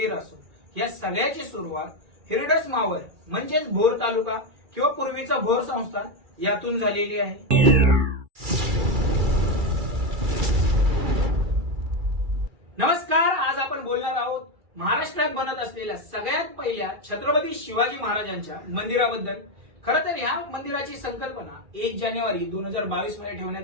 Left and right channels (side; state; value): left; late; 2.3 ms